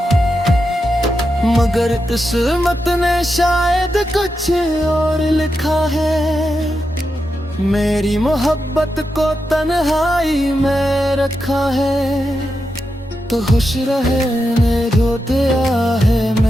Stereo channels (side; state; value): both; normal; correlation 0.87